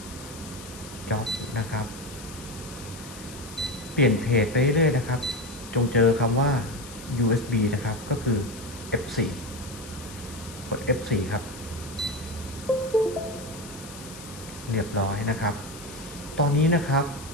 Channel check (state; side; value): noise; left; hiss, 15 dB below the sound